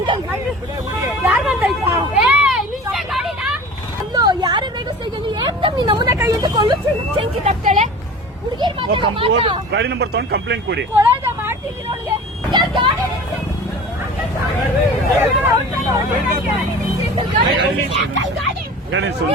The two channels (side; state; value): both; normal; correlation 0.39